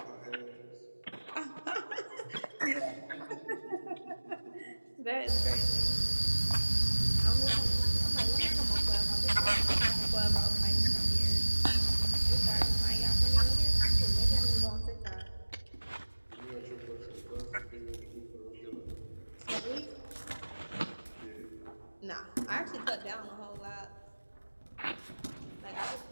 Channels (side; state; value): both; inverted; correlation -1.00